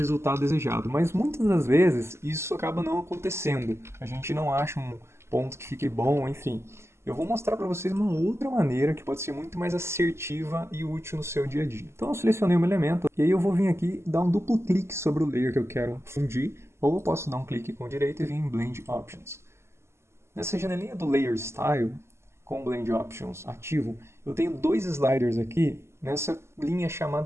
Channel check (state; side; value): late; left; 0.13 ms